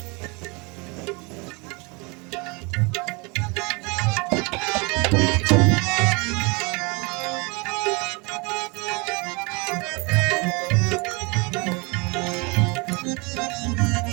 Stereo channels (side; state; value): left; quieter; 29.1 dB